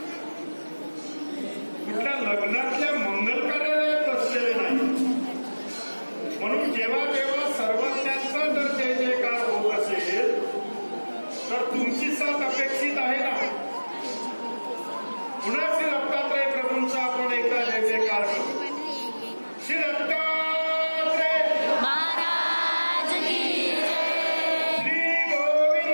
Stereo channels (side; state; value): both; inverted; correlation -1.00